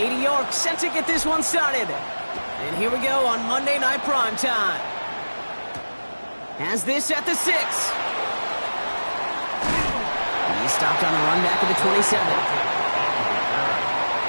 York set to get this one started. And here we go on Monday Night Primetime. Has this at the 6. He stopped on the run back of the 27. The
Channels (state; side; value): inverted; both; correlation -1.00